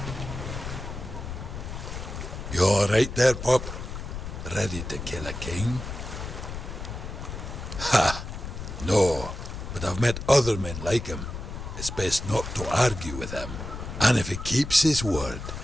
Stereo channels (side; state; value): left; noise; rumble, 8 dB below the sound